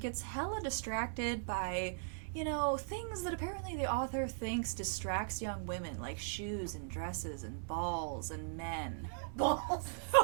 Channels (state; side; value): silent; left; digital silence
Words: hella distracted by, you know, things that apparently the author thinks distracts young women, like shoes and dresses and balls and men. Balls.